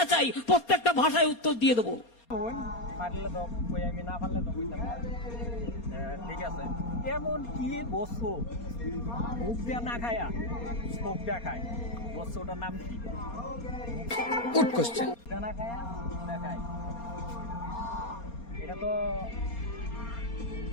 চাই, প্রত্যেকটা ভাষায় উত্তর দিয়ে দেবো। পারলে তো কই আমি না পারলে তো কইতাম না। ঠিক আছে এমন কি বস্তু মুখ দিয়া না খায়া চোখ দিয়া খায় বস্তুটার নাম কি? Good question. না খায়া না খায় এটা তো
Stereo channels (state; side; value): late; right; 4.3 ms